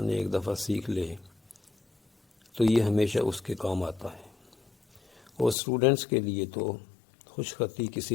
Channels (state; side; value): drops out; right; at 5.6 s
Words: ایک دفعہ سیکھ لے تو یہ ہمیشہ اس کے کام آتا ہے، اور اسٹوڈنٹس کے لیے تو خوش خطی کسی